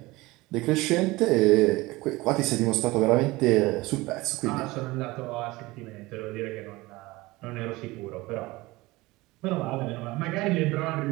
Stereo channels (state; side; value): quieter; left; 20.8 dB